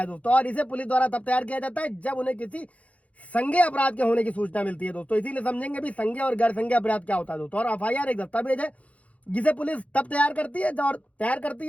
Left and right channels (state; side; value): late; right; 0.066 ms